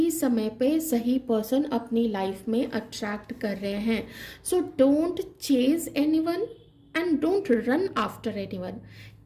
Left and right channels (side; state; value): both; identical; correlation 1.00